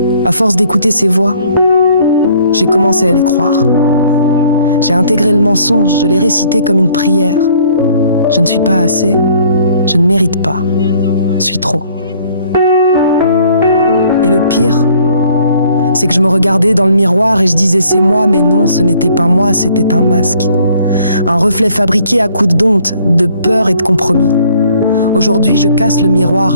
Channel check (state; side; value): inverted; both; correlation -0.60